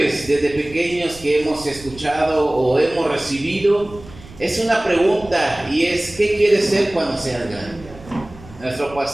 desde pequeños que hemos escuchado o hemos recibido es una pregunta, y es: ¿qué quieres ser cuando seas grande? Nuestro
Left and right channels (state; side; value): noise; right; rumble, 19 dB below the sound